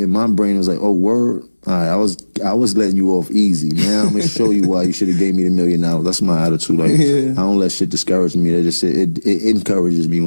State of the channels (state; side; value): inverted; both; correlation -1.00